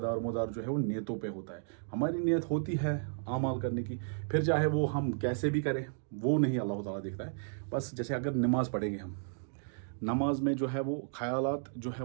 जो है वो नीयतों पे होता है। हमारी नीयत होती है आमाल करने की, फिर चाहे वो हम कैसे भी करें वो नहीं अल्लाह ताला देखता है। बस जैसे अगर नमाज़ पढ़ेंगे हम, नमाज में जो है वो ख़यालात जो है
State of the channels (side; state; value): left; silent; digital silence